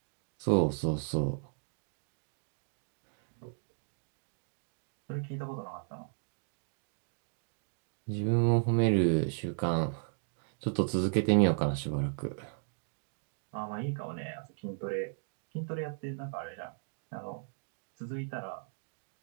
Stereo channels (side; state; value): left; silent; digital silence